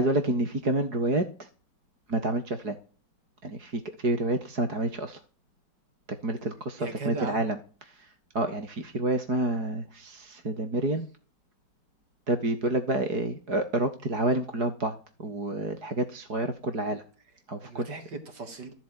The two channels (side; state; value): left; late; 4.8 ms